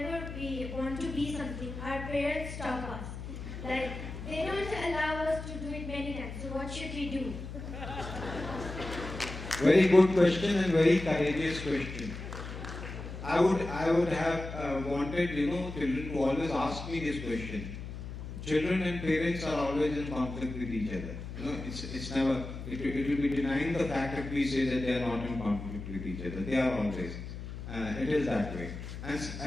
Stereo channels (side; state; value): left; noise; hum, 9 dB below the sound